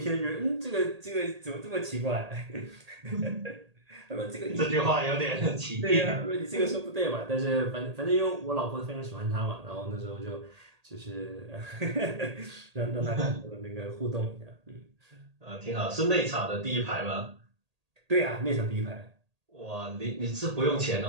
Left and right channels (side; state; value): left; late; 1.8 ms